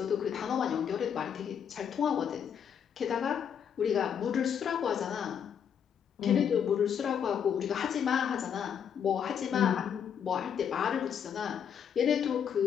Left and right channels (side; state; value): right; quieter; 8.0 dB